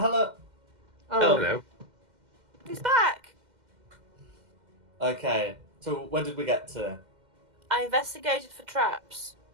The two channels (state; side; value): late; left; 2.1 ms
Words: Oh, Hello. He's back. Okay, so where did we get to? I investigated for traps.